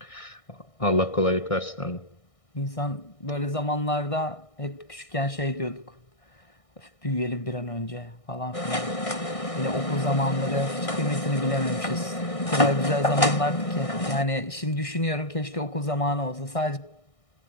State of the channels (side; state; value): right; late; 1.6 ms